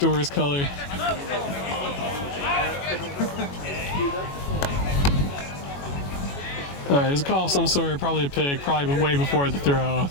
a worse color. All right, there's a call of some sort, probably a pick, probably way before the throw.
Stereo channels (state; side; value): late; right; 21 ms